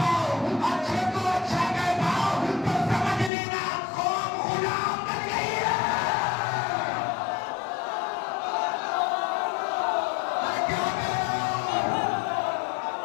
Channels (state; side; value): drops out; right; at 3.3 s